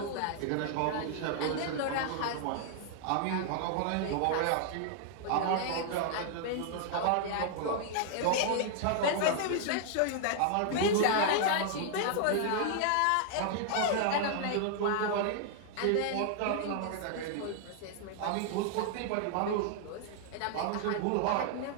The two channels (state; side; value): different; both; correlation 0.00